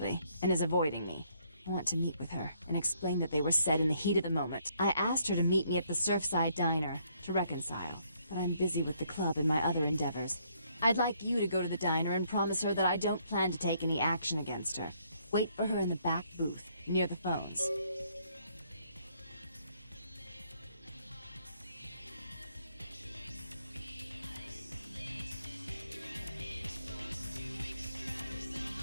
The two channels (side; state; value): both; inverted; correlation -0.69